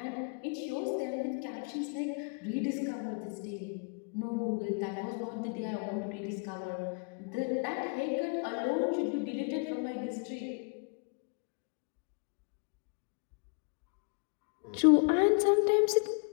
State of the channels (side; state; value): right; quieter; 36.8 dB